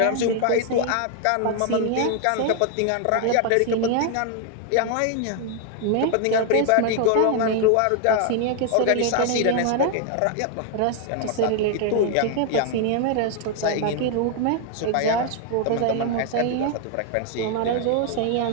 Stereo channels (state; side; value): different; both; correlation 0.00